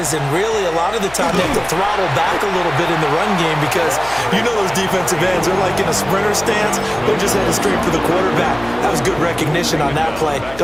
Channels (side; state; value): left; noise; hum, 18 dB below the sound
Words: And really, a lot of the time, they have to throttle back a little bit in the run game because you know those defensive ends are like in a sprinter stance. They're just headed straight for the quarterback. That was good recognition on that play to